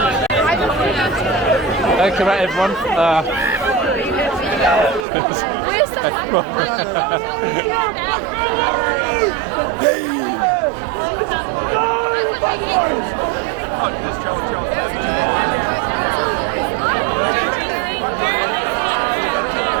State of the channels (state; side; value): drops out; left; at 5.1 s